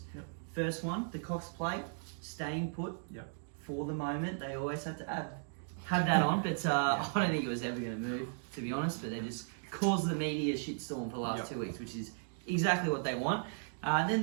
Yep. First one, the Cox Plate staying put Yep. for the moment. They always have to have that on, but I don't think it was ever going to move, to be honest. But they just caused the media shitstorm for the last 2 weeks, which is exactly what they want. And then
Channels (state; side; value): silent; left; digital silence